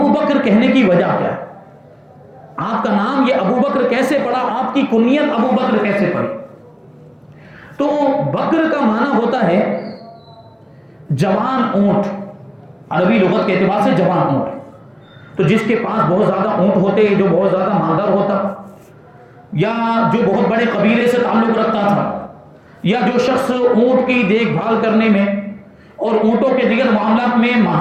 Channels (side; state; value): both; identical; correlation 1.00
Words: بکر کہنے کی وجہ کیا ہے؟ آپ کا نام یہ ابو بکر کیسے پڑا؟ آپ کی کنیت ابو بکر کیسے پڑی؟ تو بکر کا معنی ہوتا ہے جوان اونٹ، عربی لغت کے اعتبار سے جوان اونٹ۔ تو جس کے پاس بہت زیادہ اونٹ ہوتے، جو بہت زیادہ مالدار ہوتا، یا جو بہت بڑے قبیلے سے تعلق رکھتا تھا، یا جو شخص اونٹ کی دیکھ بھال کرنے میں اور اونٹوں کے دیگر معاملات میں